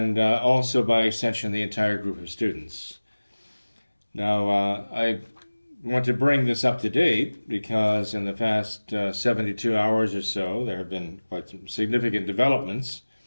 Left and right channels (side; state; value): both; inverted; correlation -1.00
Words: also by extension the entire group of students. Now I want to bring this up to date because in the past 72 hours or so there have been quite some significant developments,